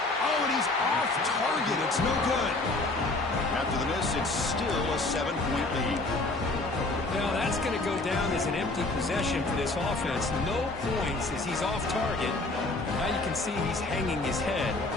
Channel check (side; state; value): right; quieter; 3.0 dB